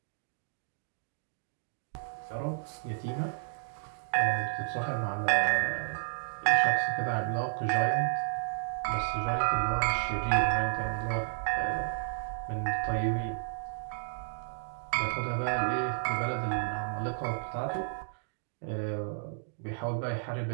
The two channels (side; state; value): left; silent; digital silence